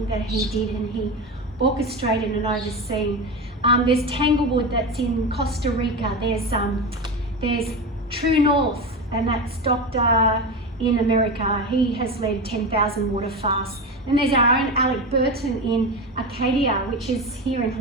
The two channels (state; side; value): normal; both; correlation 0.22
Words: that he did, and he orchestrated and overseen. There's Tanglewood that's in Costa Rica. There's True North, and that's Doctor in America. He has led 10,000 water fasts. And there's our own Alec Burton in Acadia, which is here in